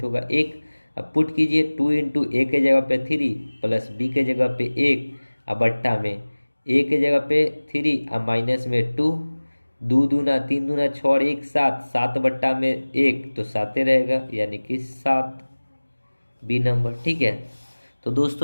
होगा 1। अब पुट कीजिए 2 इंटू a के जगह पे 3 प्लस b के जगह पे 1 अब बट्टा में a के जगह पे 3 अब माइनस में 2 2 दूना 3 दूना 6 और 1 7 7 बट्टा में 1 तो 7 रहेगा यानी कि 7 बी नंबर। ठीक है, तो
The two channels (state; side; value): inverted; both; correlation -1.00